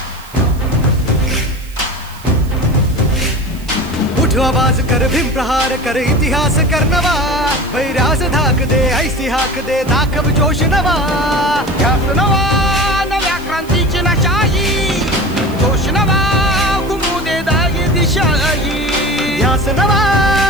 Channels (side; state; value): right; noise; hiss, 21 dB below the sound